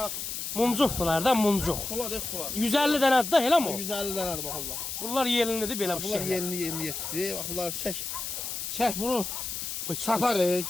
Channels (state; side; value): noise; left; hiss, 5 dB below the sound